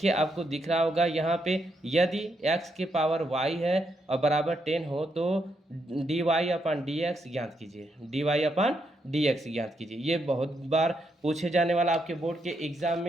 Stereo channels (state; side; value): normal; both; correlation 0.79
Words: आपको दिख रहा होगा यहाँ पे, यदि x के पावर y है और बराबर 10 हो तो dy/dx ज्ञात कीजिए, dy/dx ज्ञात कीजिए। ये बहुत बार पूछे जाने वाला आपके बोर्ड के एग्जाम